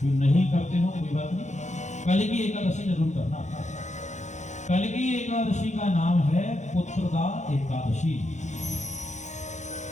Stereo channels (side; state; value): right; late; 0.34 ms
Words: जो नहीं करते हो कोई बात नहीं, कल की एकादशी जरूर करना। कल की एकादशी का नाम है पुत्रदा एकादशी।